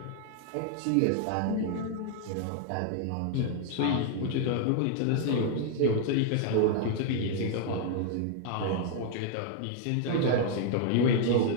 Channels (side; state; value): both; different; correlation 0.00